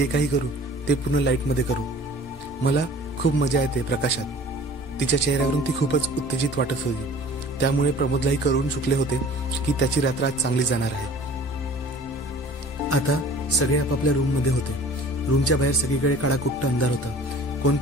काही करू ते पूर्ण लाईटमध्ये करू. मला खूप मजा येते प्रकाशात. तिच्या चेहऱ्यावरून ती खूपच उत्तेजित वाटत होती. त्यामुळे प्रमोदलाही करून चुकले होते की त्याची रात्र आज चांगली जाणार आहे. आता सगळे आपापल्या रूम मध्ये होते. रूमच्या बाहेर सगळीकडे काळाकुट्ट अंधार होता. कोण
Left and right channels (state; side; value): normal; both; correlation 0.47